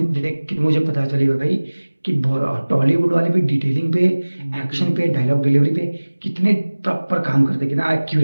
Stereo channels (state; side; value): inverted; both; correlation -1.00